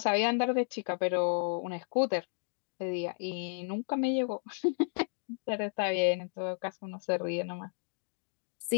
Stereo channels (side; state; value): right; silent; digital silence